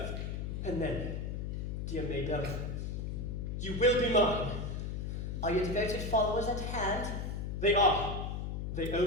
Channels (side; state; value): left; noise; hum, 3 dB below the sound